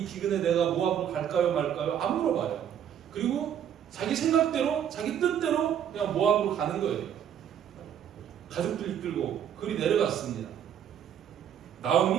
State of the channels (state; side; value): quieter; left; 9.3 dB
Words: 기근에 내가 모압으로 갈까요 말까요? 안 물어봐요. 그리고 자기 생각대로 자기 뜻대로 그냥 모압으로 가는 거예요. 가족들 이끌고 그리 내려갔습니다.